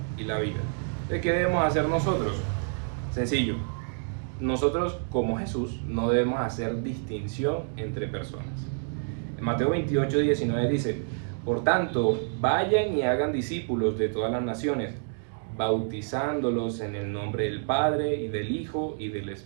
y la vida. Entonces, ¿qué debemos hacer nosotros? Sencillo. Nosotros, como Jesús, no debemos hacer distinción entre personas. En Mateo 28, 19 dice: por tanto, vayan y hagan discípulos de todas las naciones, bautizándolos en el nombre del Padre, y del Hijo, y del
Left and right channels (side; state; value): left; silent; digital silence